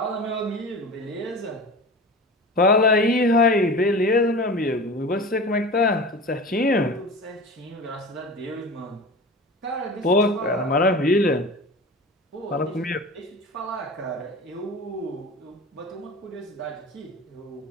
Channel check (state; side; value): normal; both; correlation 0.34